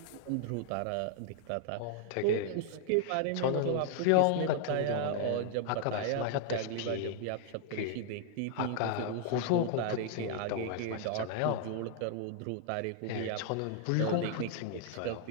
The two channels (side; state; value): both; different; correlation 0.00